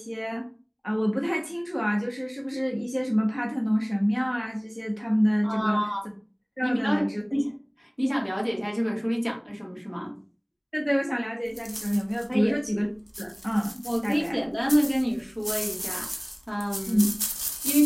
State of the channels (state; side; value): identical; both; correlation 1.00